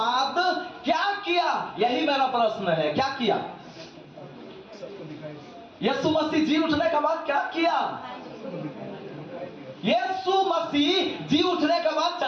क्या किया, यही मेरा प्रश्न है, क्या किया यीशु मसीह जी उठने के बाद, क्या किया यीशु मसीह जी उठने के बाद?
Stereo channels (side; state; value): both; identical; correlation 1.00